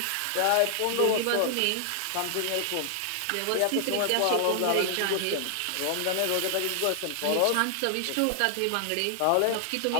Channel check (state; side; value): different; both; correlation 0.00